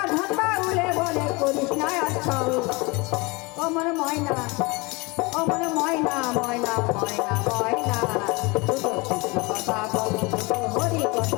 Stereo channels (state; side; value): quieter; right; 26.0 dB